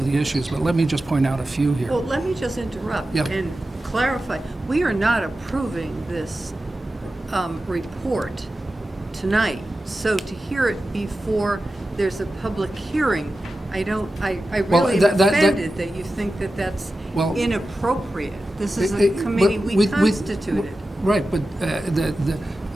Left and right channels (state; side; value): normal; both; correlation 0.93